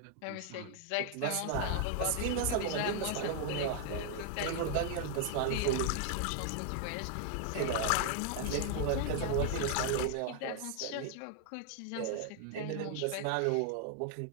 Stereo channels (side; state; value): both; different; correlation 0.00